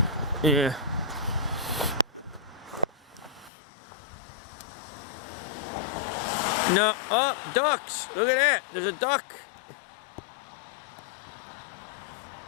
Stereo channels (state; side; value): drops out; right; at 3.5 s